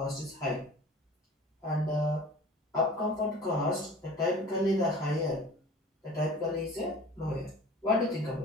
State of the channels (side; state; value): both; normal; correlation 0.42